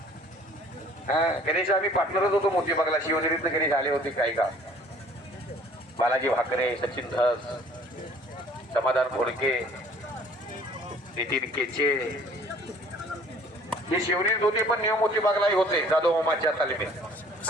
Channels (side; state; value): both; normal; correlation 0.54